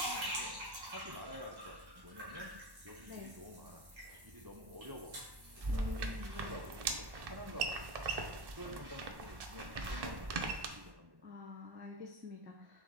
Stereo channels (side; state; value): left; late; 1.1 ms